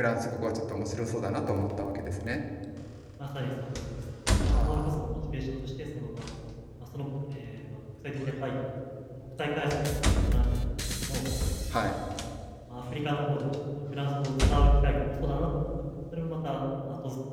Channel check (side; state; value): both; identical; correlation 1.00